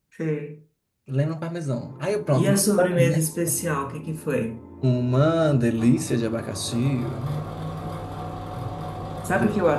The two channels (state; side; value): identical; both; correlation 1.00